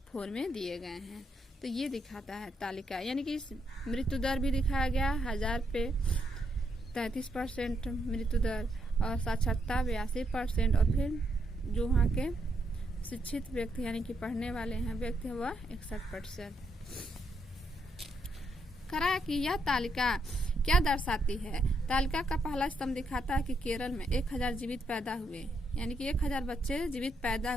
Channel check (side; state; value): both; normal; correlation 0.77